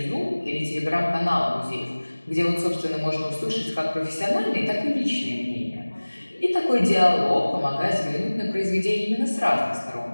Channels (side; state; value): both; inverted; correlation -1.00